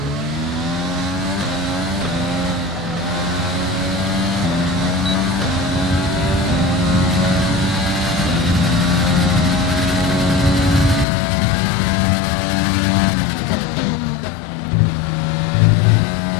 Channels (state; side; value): drops out; right; at 11.1 s